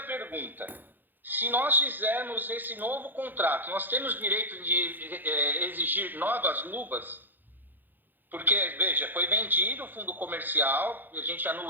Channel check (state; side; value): late; left; 0.088 ms